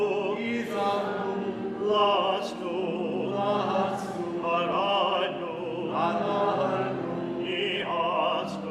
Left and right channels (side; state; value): both; identical; correlation 1.00